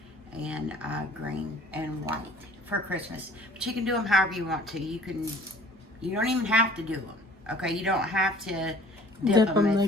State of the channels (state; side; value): normal; both; correlation 0.52